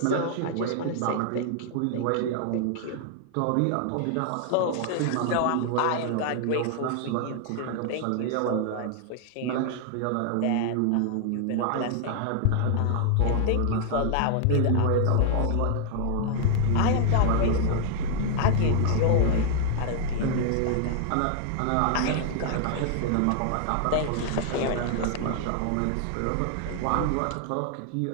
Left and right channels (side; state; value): both; different; correlation 0.00